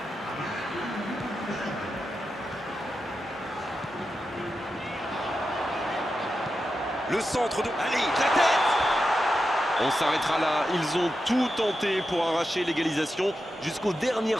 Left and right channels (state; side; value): normal; both; correlation 0.89